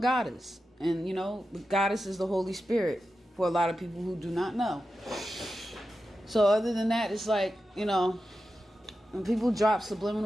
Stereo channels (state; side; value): normal; both; correlation 0.91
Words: goddess. And, the goddess is the Holy Spirit for a lot of people who do not know. So other than that, it's like, when people drop